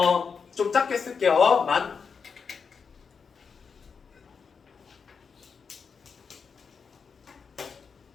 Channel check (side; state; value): right; quieter; 5.8 dB